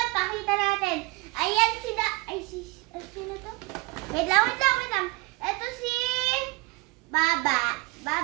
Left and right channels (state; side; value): quieter; left; 25.7 dB